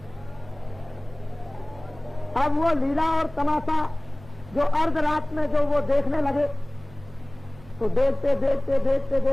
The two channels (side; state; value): right; noise; hum, 21 dB below the sound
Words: अब वो लीला और तमाशा जो अर्ध रात में जो वो देखने लगे तो देखते देखते देखते